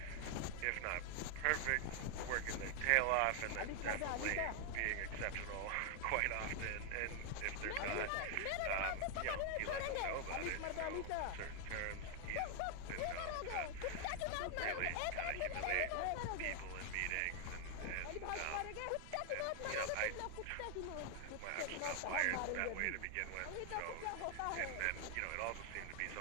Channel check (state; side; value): different; both; correlation 0.00